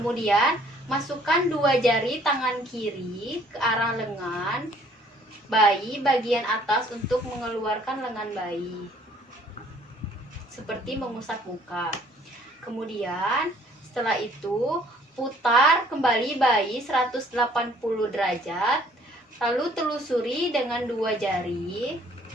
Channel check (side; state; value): both; normal; correlation 0.59